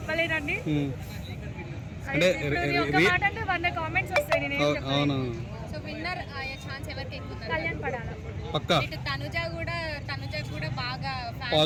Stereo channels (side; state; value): both; identical; correlation 1.00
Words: అంటే ఒక మాట అంటే 100 కామెంట్స్ వస్తాయి. నేను ఏం చెప్పలేను. సో విన్నర్ అయ్యే ఛాన్స్ ఎవరికి ఎక్కువ ఉంది? కళ్యాణ్ పడాల పక్కా. తనుజ కూడా బాగా